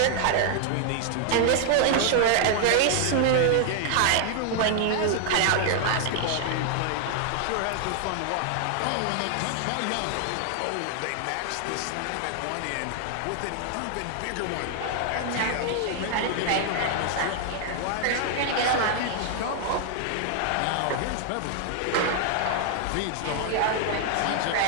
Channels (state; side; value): different; both; correlation 0.00